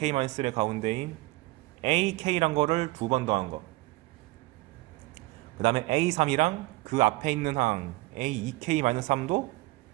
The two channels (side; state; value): left; quieter; 20.9 dB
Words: 가운데인 AK란 거를 2번 더한 거. 그 다음에 A3이랑 그 앞에 있는 항 A2K-3도